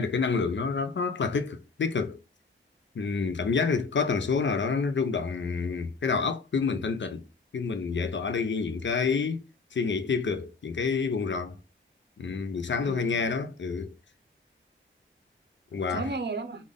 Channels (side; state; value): right; quieter; 4.5 dB